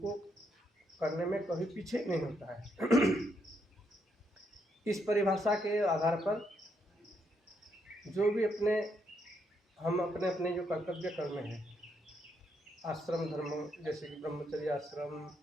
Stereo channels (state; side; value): normal; both; correlation 0.77